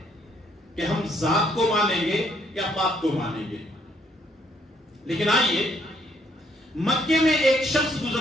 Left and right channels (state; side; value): normal; both; correlation 0.68